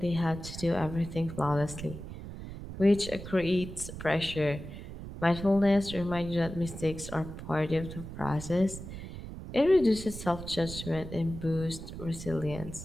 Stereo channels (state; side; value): noise; right; rumble, 10 dB below the sound